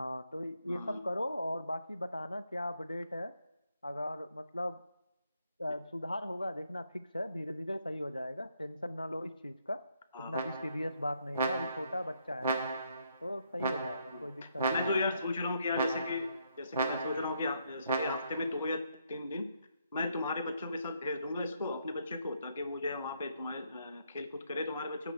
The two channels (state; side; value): inverted; both; correlation -0.74